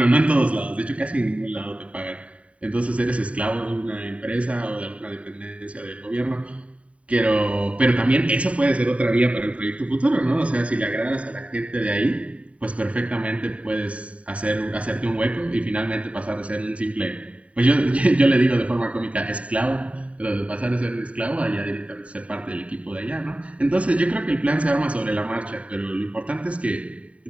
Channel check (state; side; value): late; left; 0.065 ms